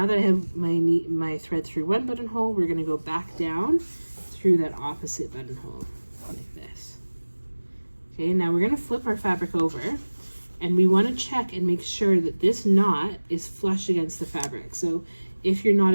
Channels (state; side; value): inverted; both; correlation -1.00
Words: that I have my thread through one buttonhole, we're going to go back down through that opposite buttonhole like this. Okay, now we're going to flip our fabric over, and we want to check and make sure that this knot is flush against the fabric. So if your knot